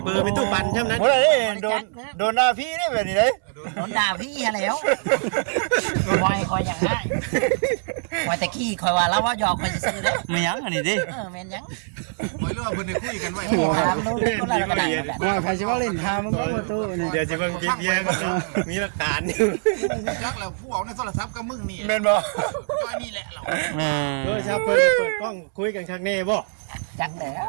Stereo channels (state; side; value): silent; left; 63 dB below the other